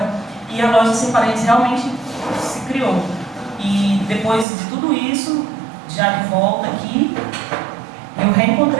e a Loja Sem Paredes realmente se criou. E depois de tudo isso, já de volta aqui, eu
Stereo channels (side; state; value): left; drops out; at 4.5 s